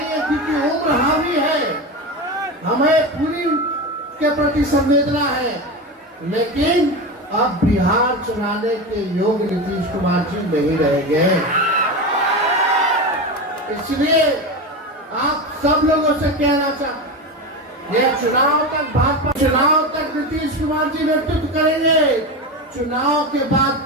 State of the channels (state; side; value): normal; both; correlation 0.21